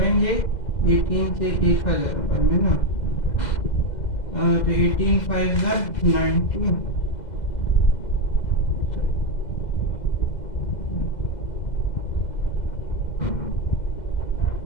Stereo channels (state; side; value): late; right; 2.0 ms